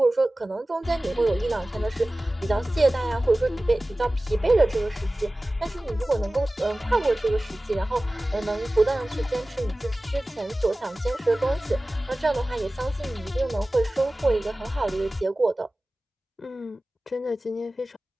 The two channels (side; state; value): both; normal; correlation 0.97